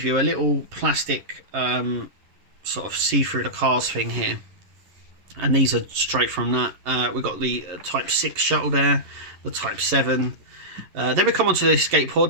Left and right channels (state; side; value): late; left; 11 ms